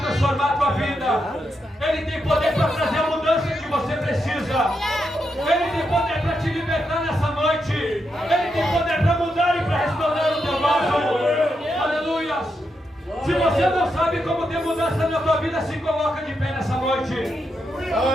a tua vida, Ele tem poder para trazer a mudança que você precisa, Ele tem poder para te libertar nessa noite, Ele tem poder para mudar e para restaurar o teu vaso. Aleluia. Se você não sabe como ter mudança na tua vida, se coloca de pé nessa noite.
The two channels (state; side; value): normal; both; correlation 0.84